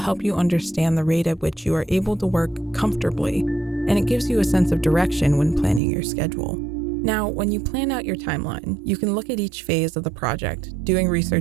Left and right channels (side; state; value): left; drops out; at 5.8 s